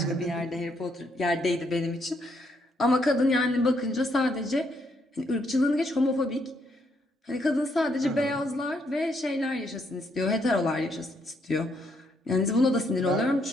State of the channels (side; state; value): both; normal; correlation 0.74